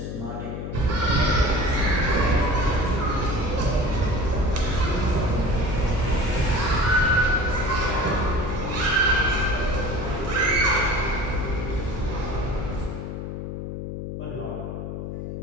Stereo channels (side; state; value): left; noise; hum, 6 dB below the sound